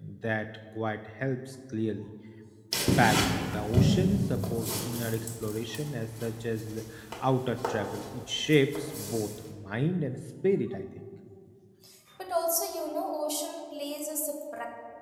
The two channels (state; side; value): identical; both; correlation 1.00